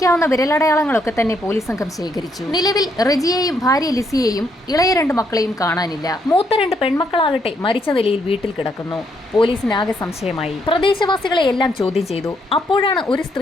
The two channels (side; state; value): both; normal; correlation 0.74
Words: വിരലടയാളങ്ങളൊക്കെ തന്നെ പോലീസ് സംഘം ശേഖരിച്ചു. നിലവിൽ റജിയെയും ഭാര്യ ലിസിയെയും ഇളയ 2 മക്കളെയും കാണാനില്ല. മൂത്ത 2 പെൺമക്കളാകട്ടെ മരിച്ച നിലയിൽ വീട്ടിൽ കിടക്കുന്നു. പോലീസിനാകെ സംശയമായി. പ്രദേശവാസികളെ എല്ലാം ചോദ്യം ചെയ്തു. അപ്പോഴാണ് ഒരു